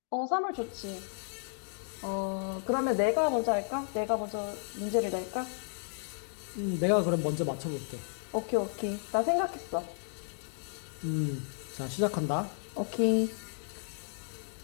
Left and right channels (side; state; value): right; silent; digital silence